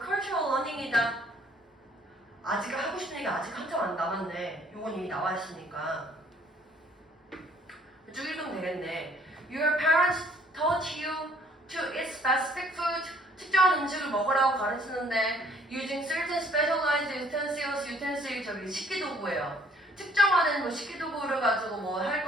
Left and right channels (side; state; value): both; normal; correlation 0.60